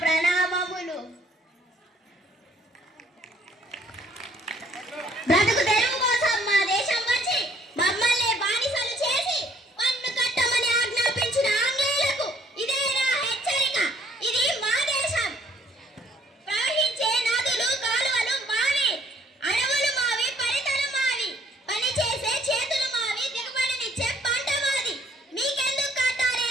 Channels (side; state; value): both; normal; correlation 0.63